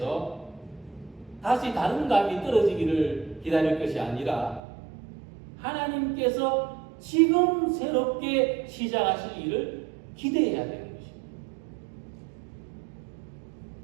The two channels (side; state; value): left; drops out; at 4.6 s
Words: 다시 다른 감이 떨어지기를 기다릴 것이 아니라 하나님께서 지금 새롭게 시작하실 일을 기대해야 되는 것입니다.